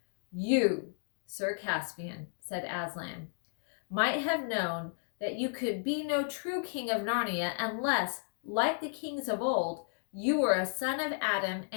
You, Sir Caspian, said Aslan, might have known that you could be no true king of Narnia unless, like the kings of old, you were a son of Adam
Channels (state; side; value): silent; right; digital silence